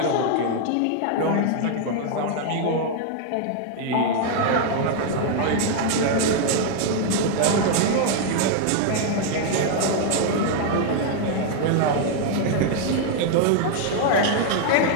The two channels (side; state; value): both; different; correlation 0.00